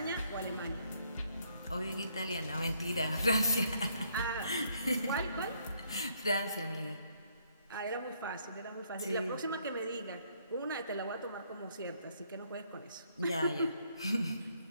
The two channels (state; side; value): inverted; both; correlation -0.69